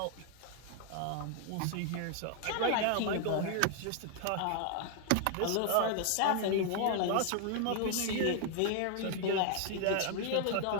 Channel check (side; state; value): both; different; correlation 0.00